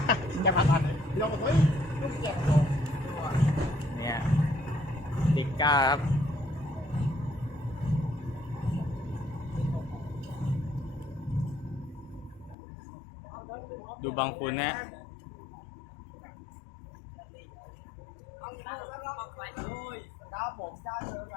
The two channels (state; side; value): drops out; right; at 12.6 s